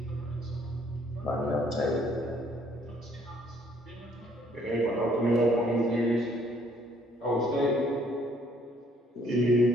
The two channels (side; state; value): both; normal; correlation 0.64